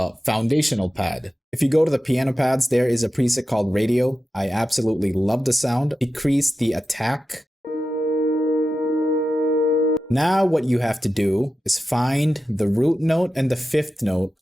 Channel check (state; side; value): normal; both; correlation 0.92